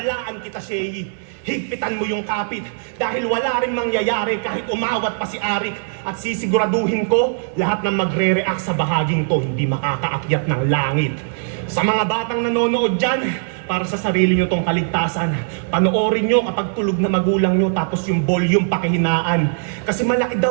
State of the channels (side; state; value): left; silent; 66 dB below the other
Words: kita, Shay. Higpitan mo yung kapit dahil wala rin mangyayari kahit umawat pa si Arik at sisiguraduhin ko lahat ng magre-react sa bahaging to hindi makakaakyat ng langit. Sa mga batang nanonood dyan, para sa sarili nyo tong kaligtasan, panoorin nyo kapag tulog na magulang nyo tapos yung volume pakihinaan. Kasi malaki